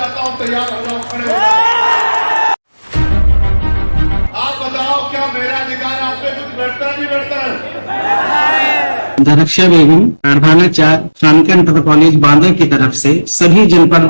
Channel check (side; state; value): both; inverted; correlation -1.00